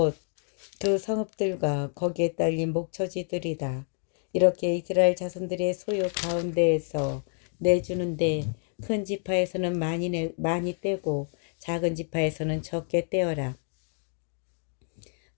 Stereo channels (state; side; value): silent; right; 58 dB below the other